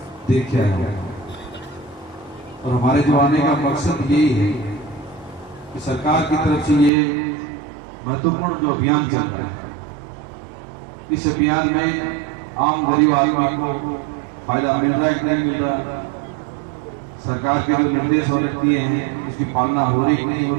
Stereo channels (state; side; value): drops out; left; at 6.9 s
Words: देख के आया हूँ और हमारे जो आने का मकसद यही है कि सरकार की तरफ से ये महत्वपूर्ण जो अभियान चल रहा है, इस अभियान में आम गरीब आदमी को फायदा मिल रहा है कि नहीं मिल रहा, सरकार के जो निर्देश और दिए हैं उसकी पालना हो रही कि नहीं हो